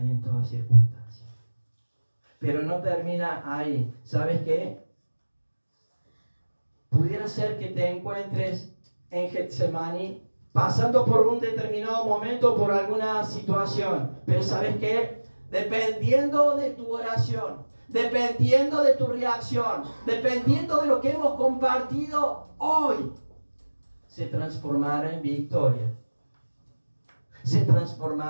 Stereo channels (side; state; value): both; inverted; correlation -1.00